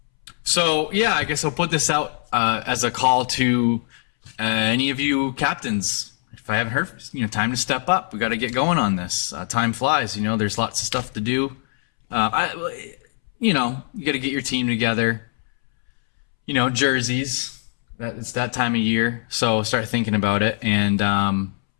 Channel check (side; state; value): right; silent; 64 dB below the other